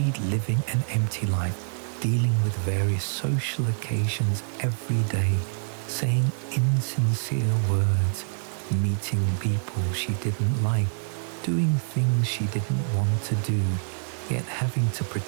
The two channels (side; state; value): left; silent; 58 dB below the other